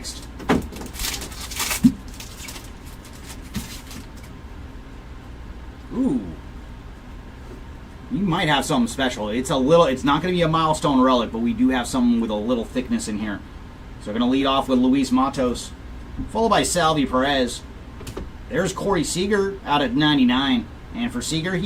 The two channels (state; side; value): identical; both; correlation 1.00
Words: Ooh. You might have something special. It's not going to be a milestone relic, but we do have something with a little thickness in here. So we're going to lead off with Luis Matos, followed by Salvi Perez. There's Corey Seager out at 99. And for Seager,